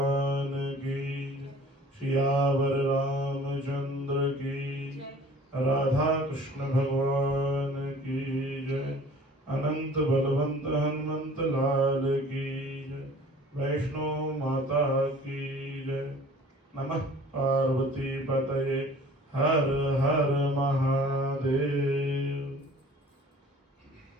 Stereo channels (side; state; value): both; normal; correlation 0.49